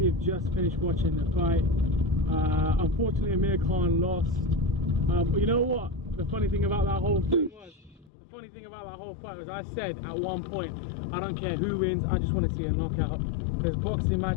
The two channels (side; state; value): right; drops out; at 8.1 s